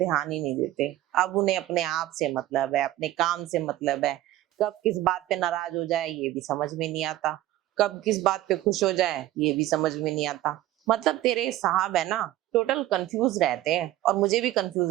ही नहीं देते। अब उन्हें अपने आप से मतलब है, अपने काम से मतलब है। कब किस बात पे नाराज हो जाए ये भी समझ में नहीं आता, कब किस बात पे खुश हो जाए ये भी समझ में नहीं आता। मतलब तेरे साहब है ना, टोटल कंफ्यूज रहते हैं और मुझे भी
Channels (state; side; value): quieter; left; 14.7 dB